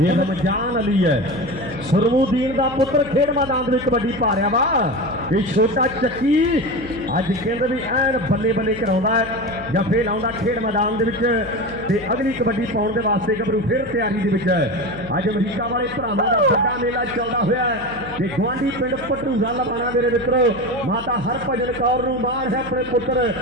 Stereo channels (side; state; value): left; noise; hum, 16 dB below the sound